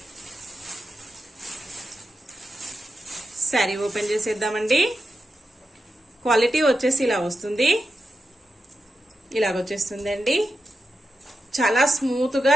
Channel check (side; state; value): both; normal; correlation 0.89